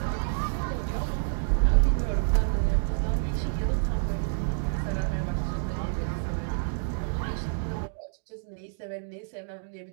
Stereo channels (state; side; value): silent; left; 59 dB below the other